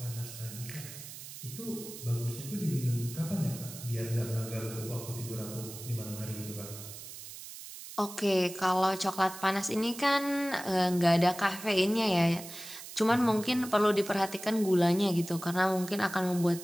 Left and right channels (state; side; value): noise; right; hiss, 13 dB below the sound